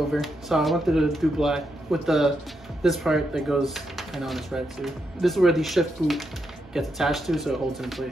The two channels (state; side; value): normal; both; correlation 0.82